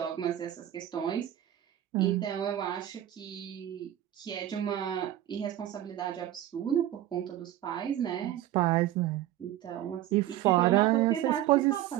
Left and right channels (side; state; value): left; quieter; 12.8 dB